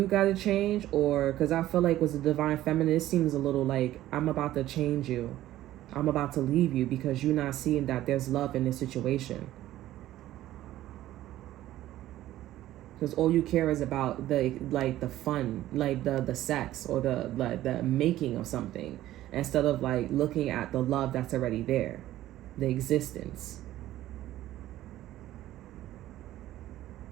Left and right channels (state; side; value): quieter; left; 14.3 dB